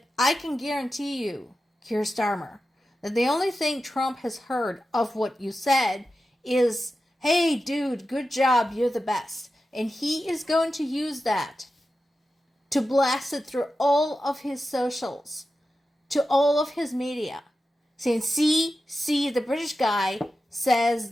I can guarantee you, Keir Starmer, that the only thing Trump has heard of what you said is, hey, dude, good job, you're the best. And he is going to use that to blast it through all of his socials, to all of his media, saying, see, the British guy says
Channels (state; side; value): normal; both; correlation 0.92